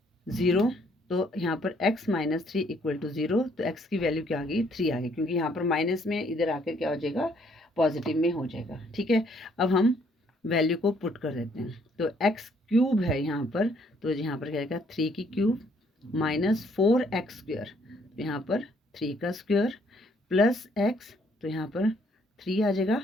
0, तो यहाँ पर x माइनस 3 इक्वल टू 0, तो x की वैल्यू क्या आ गई, 3 आ गई, क्योंकि यहाँ पर माइनस में इधर आकर क्या हो जाएगा, पॉजिटिव में हो जाएगा, ठीक है। अब हम वैल्यू को पुट कर देते हैं, तो x क्यूब है यहाँ पर, तो यहाँ पर क्या आएगा, 3 की क्यूब माइनस 4x², तो यहाँ पर 3 का स्क्वायर प्लस x, तो यहाँ पर 3 आ जाएगा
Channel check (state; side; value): normal; both; correlation 0.66